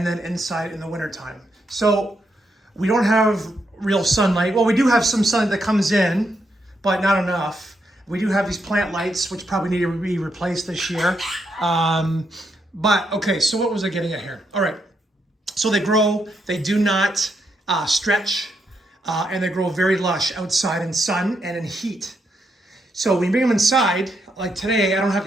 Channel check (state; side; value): normal; both; correlation 0.80